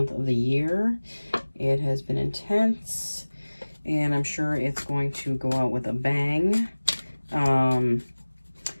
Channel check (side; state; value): both; inverted; correlation -1.00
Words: of the year. It has been intense and I'm sure it's going to go out with a bang.